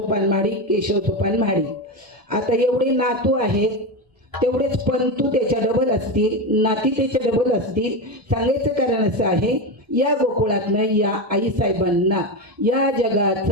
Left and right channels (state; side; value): late; left; 1.7 ms